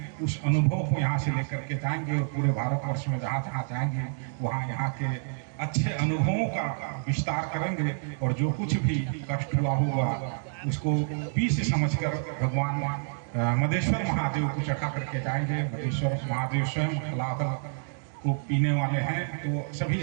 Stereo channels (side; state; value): left; silent; digital silence